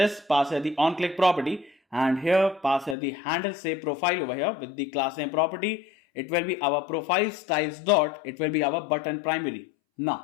pass here the on click property, and here pass here the handle save profile over here with the class name property. It will be our profile styles dot, it will be our button primary.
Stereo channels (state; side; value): drops out; right; at 3.0 s